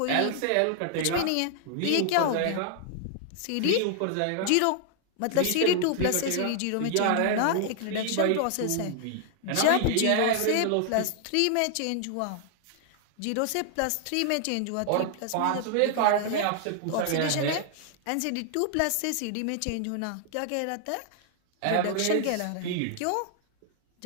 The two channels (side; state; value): both; different; correlation 0.00